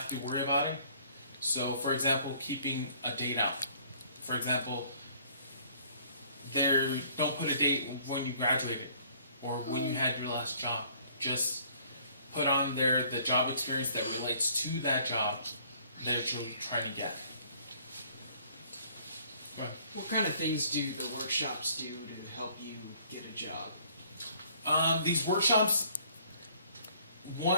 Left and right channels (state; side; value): inverted; both; correlation -0.59